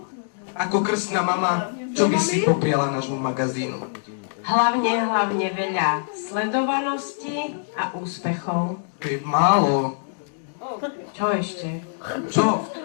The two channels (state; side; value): silent; right; digital silence